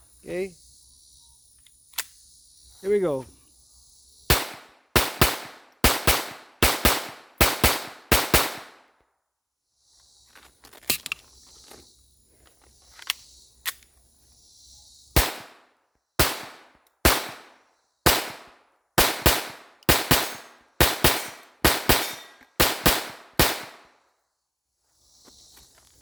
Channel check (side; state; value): both; identical; correlation 1.00